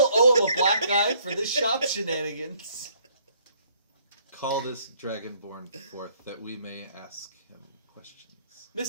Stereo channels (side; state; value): both; inverted; correlation -0.63